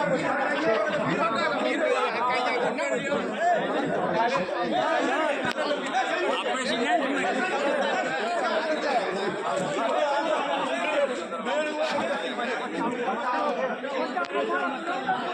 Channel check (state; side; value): identical; both; correlation 1.00